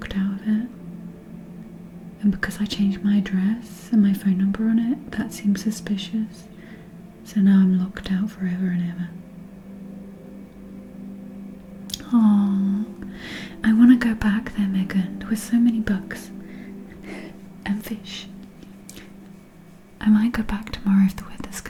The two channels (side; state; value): both; identical; correlation 1.00